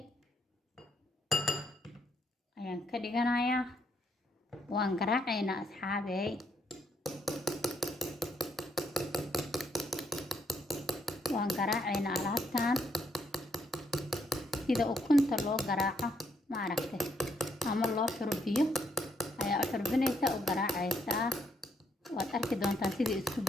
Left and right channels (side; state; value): both; normal; correlation 0.74